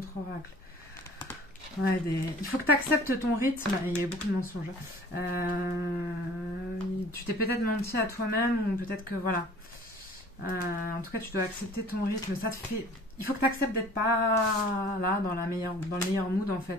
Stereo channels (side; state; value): both; normal; correlation 0.49